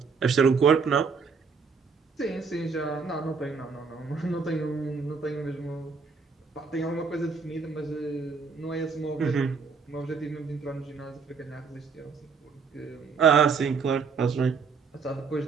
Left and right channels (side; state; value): left; quieter; 5.3 dB